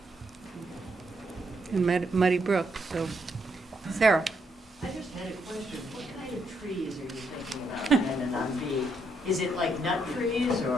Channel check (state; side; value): normal; both; correlation 0.76